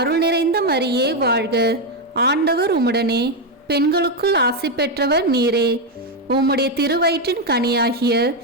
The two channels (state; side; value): normal; both; correlation 0.05